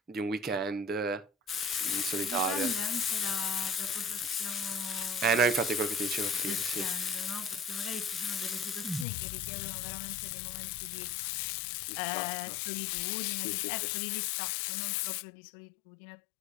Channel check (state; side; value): drops out; right; at 9.1 s